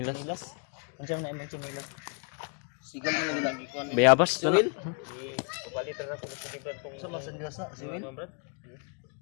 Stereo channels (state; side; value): quieter; right; 37.9 dB